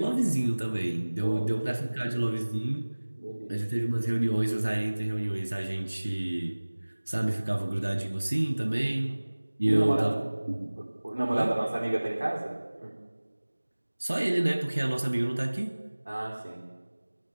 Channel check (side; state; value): both; inverted; correlation -1.00